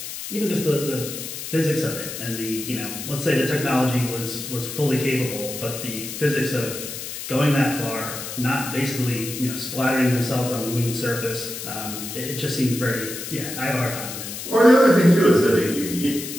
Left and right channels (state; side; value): noise; left; hiss, 8 dB below the sound